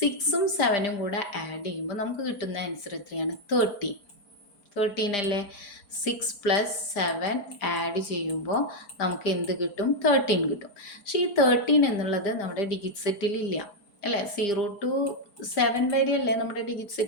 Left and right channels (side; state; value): right; late; 5.0 ms